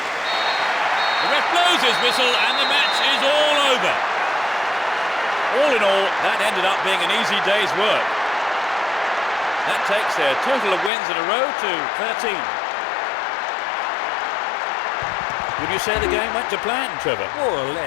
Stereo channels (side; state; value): right; drops out; at 10.9 s